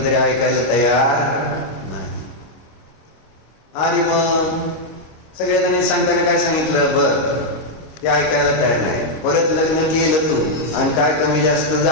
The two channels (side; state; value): right; late; 25 ms